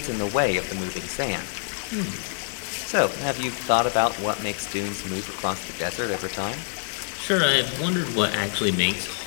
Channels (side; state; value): right; silent; digital silence